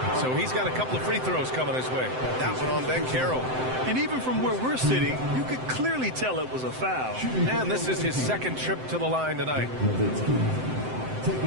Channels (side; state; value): left; late; 7.8 ms